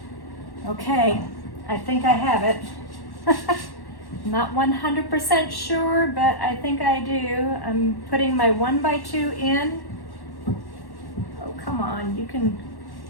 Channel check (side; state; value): right; late; 1.1 ms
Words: Okay, I think I have it. Not 100% sure, but I think I do. I'm putting my 1x2 in. Oh, come on, you can